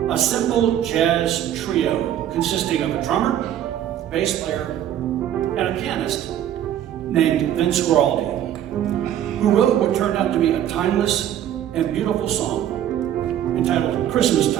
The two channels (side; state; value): left; quieter; 11.0 dB